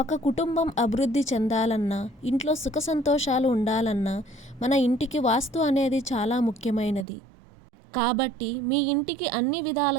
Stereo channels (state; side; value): drops out; left; at 7.1 s